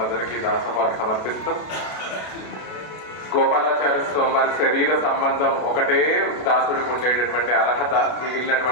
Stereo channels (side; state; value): right; late; 33 ms